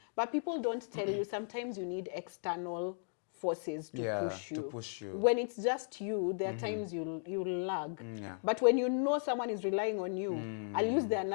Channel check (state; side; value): silent; right; digital silence